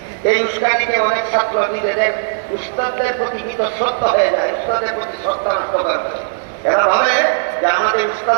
এই উস্কানিতে অনেক ছাত্র নিজেদের উস্তাদদের প্রতি বিতশ্রদ্ধ হয়ে যায়, উস্তাদের প্রতি শ্রদ্ধা নষ্ট করে। এরা ভাবে যে আমাদের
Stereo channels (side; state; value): left; silent; 62 dB below the other